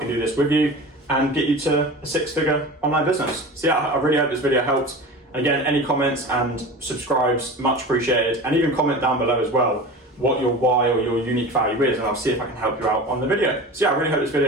do this with you and get you to a 6-figure online business. So yeah, I really hope this video helped. And again, any comments and subscribes, much appreciated. And even comment down below as well what your why or your unique value is, and I'll see if I can help you out on the video. So yeah, I really hope this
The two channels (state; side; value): normal; both; correlation 0.33